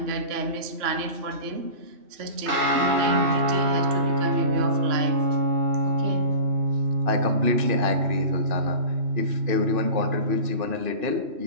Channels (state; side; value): late; left; 3.0 ms